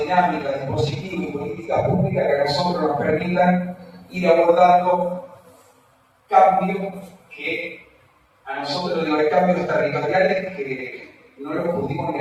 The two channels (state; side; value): identical; both; correlation 1.00